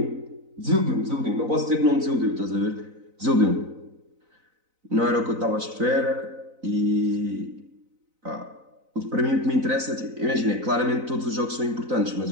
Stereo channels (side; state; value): left; late; 4.0 ms